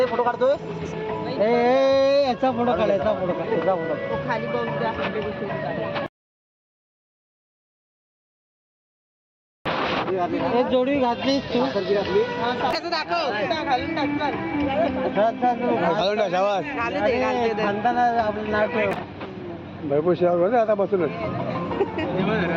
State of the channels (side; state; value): both; identical; correlation 1.00